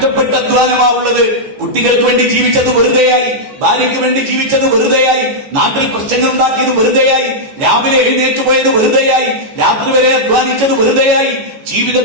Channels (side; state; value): left; late; 14 ms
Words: അധ്വാനമാവുള്ളത്. കുട്ടികൾക്ക് വേണ്ടി ജീവിച്ചത് വെറുതെയായി, ഭാര്യയ്ക്ക് വേണ്ടി ജീവിച്ചത് വെറുതെയായി, നാട്ടിൽ പ്രശ്നങ്ങൾ ഉണ്ടാക്കിയത് വെറുതെയായി, രാവിലെ എഴുന്നേറ്റ് പോയത് വെറുതെയായി, രാത്രി വരെ അധ്വാനിച്ചത് വെറുതെയായി,